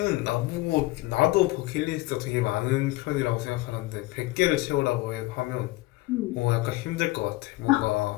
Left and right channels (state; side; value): quieter; right; 20.3 dB